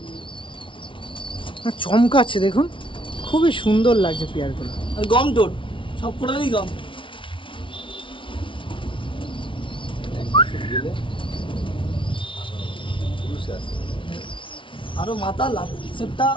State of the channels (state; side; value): late; right; 0.25 ms